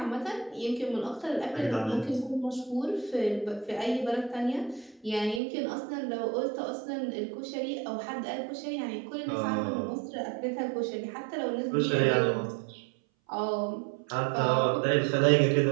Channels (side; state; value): left; drops out; at 5.4 s